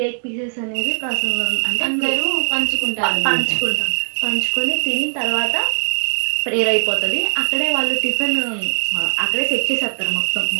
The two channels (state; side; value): silent; left; digital silence